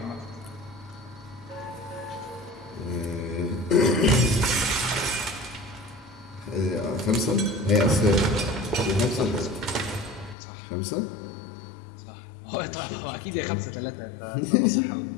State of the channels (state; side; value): drops out; right; at 10.4 s